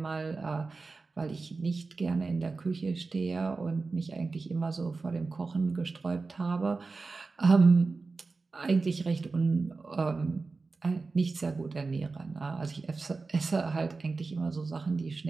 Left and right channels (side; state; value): left; quieter; 4.0 dB